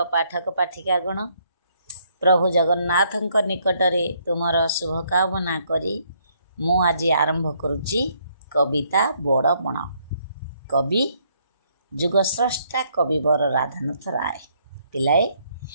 पाठक पाठिकागण। प्रभु जगन्नाथ निकटरे तुमर शुभकामना करी मु आज आरंभ करुच्ची कविता बड़पण। कवि जुगस्रष्टा कविवर राधानाथ राय। पिलाए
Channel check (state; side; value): inverted; both; correlation -0.70